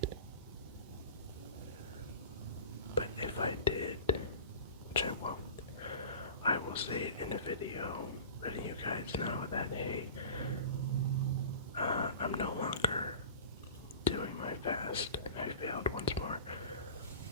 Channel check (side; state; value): both; inverted; correlation -0.37